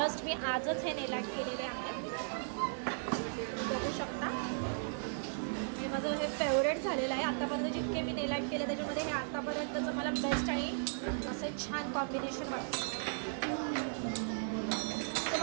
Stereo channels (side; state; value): left; silent; 54 dB below the other